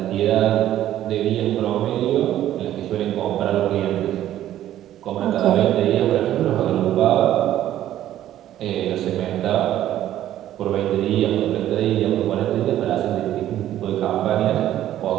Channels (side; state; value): left; quieter; 12.5 dB